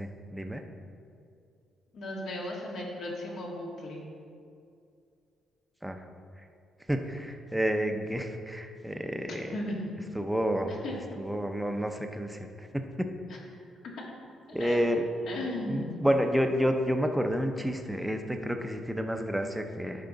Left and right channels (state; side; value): normal; both; correlation 0.88